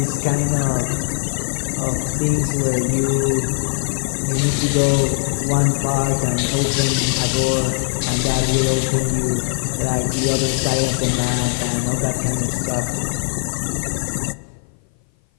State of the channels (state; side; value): silent; right; 58 dB below the other